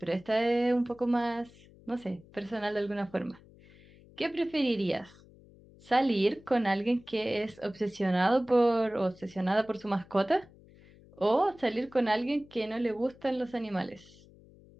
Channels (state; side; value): noise; left; hum, 24 dB below the sound